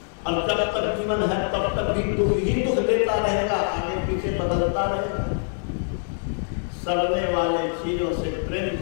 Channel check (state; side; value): silent; right; digital silence